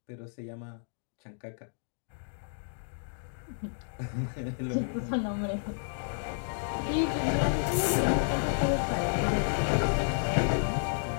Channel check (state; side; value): silent; right; digital silence